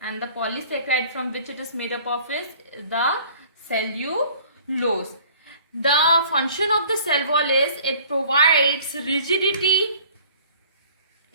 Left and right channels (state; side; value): inverted; both; correlation -0.51